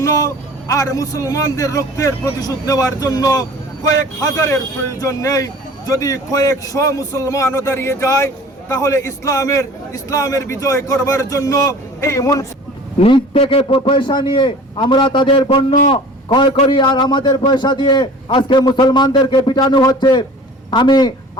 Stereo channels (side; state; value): both; normal; correlation 0.44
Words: আর মুসলমানদের রক্তের প্রতিশোধ নেওয়ার জন্য কয়েক হাজারের প্রয়োজন নেই। যদি কয়েকশ মুসলমানও দাঁড়িয়ে যায়, তাহলে ইসলামের বিজয় করবার জন্য এই নিজ থেকে পয়সা নিয়ে আমরা তাদের পণ্য ক্রয় করি, আর আমাদের পয়সা দিয়ে আজকে মুসলমানদেরকে পিটানো হচ্ছে। আমি